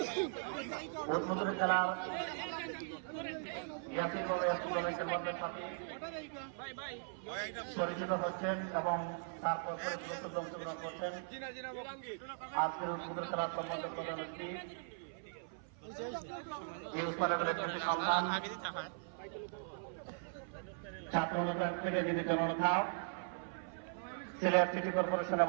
উদ্বোধনী খেলার ইয়াসির দলের মধ্যে সাথে পরিচিত হচ্ছেন এবং তারপর অংশগ্রহণ করছেন। আজকের উদ্বোধনী খেলার সম্বন্ধে প্রধান অতিথি এই উৎপাদনের একটি সন্ধান ছাত্র অনুদান থেকে যিনি জননেতা সিলেট সিটি কর্পোরেশনের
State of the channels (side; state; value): left; silent; 52 dB below the other